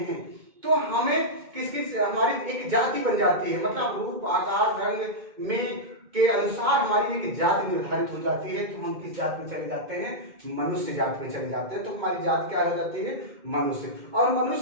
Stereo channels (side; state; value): left; late; 2.1 ms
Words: हैं तो हमें किस हमारी एक जाति बन जाती है, मतलब रूप आकार रंग में के अनुसार हमारी एक जाति निर्धारित हो जाती है। तो हम किस जात में चले जाते हैं? मनुष्य जात में चले जाते हैं। तो हमारी जात क्या हो जाती है? मनुष्य। और